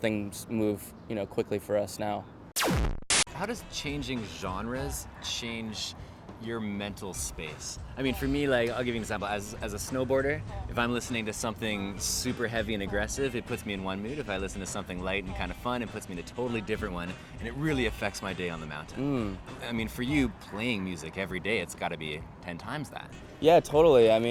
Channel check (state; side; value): identical; both; correlation 1.00